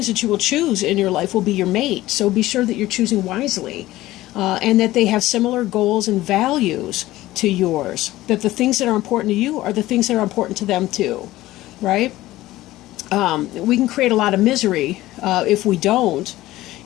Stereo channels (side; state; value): right; quieter; 16.6 dB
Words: that you will choose in your life will be your mate. So be sure that you're choosing wisely, and that they have similar goals and values to yours. That the things that are important to you are the things that are important to them too. Right? We can create a lot of misery if we don't.